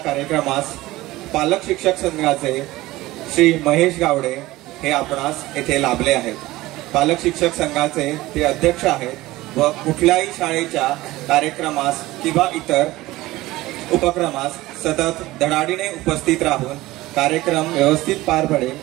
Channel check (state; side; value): quieter; left; 18.2 dB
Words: पालक शिक्षक संघाचे श्री महेश गावडे हे आपणास येथे लाभले आहेत. पालक शिक्षक संघाचे ते अध्यक्ष आहेत व कुठल्याही शाळेच्या कार्यक्रमास किंवा इतर उपक्रमास सतत धडाडीने उपस्थित राहून कार्यक्रम व्यवस्थित पार